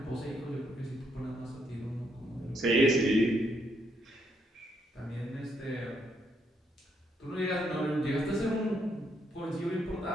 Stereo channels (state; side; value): normal; both; correlation 0.75